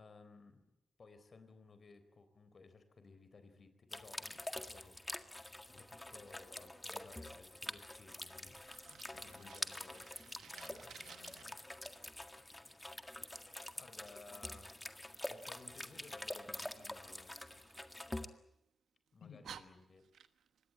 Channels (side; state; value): both; normal; correlation 0.97